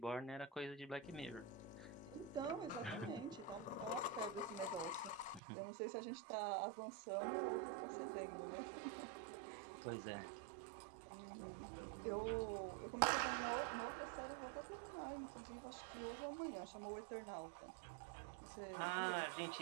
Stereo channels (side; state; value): left; drops out; at 5.4 s